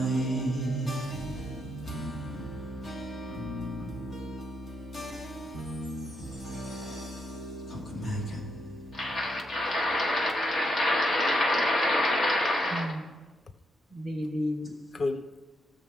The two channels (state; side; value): normal; both; correlation 0.79